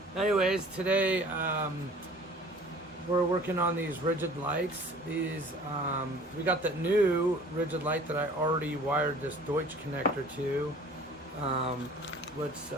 Anyways, today we're working on these rigid lights. These we got that new rigid light that I already wired this Deutsch connector to, which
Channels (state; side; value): normal; both; correlation 0.48